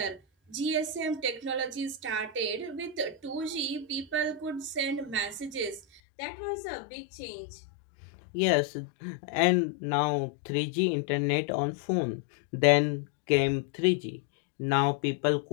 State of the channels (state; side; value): drops out; right; at 6.0 s